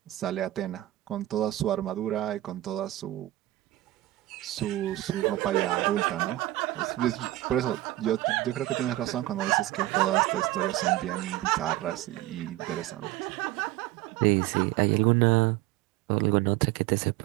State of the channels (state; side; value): quieter; left; 16.4 dB